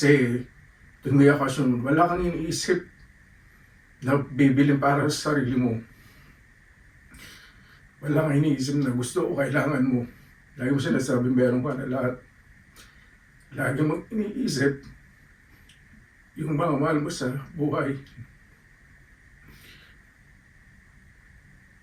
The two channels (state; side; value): identical; both; correlation 1.00